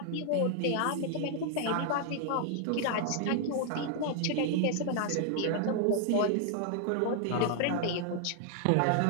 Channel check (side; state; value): both; different; correlation 0.00